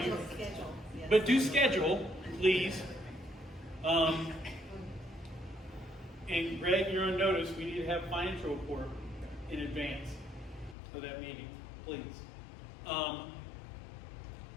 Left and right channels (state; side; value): drops out; right; at 10.8 s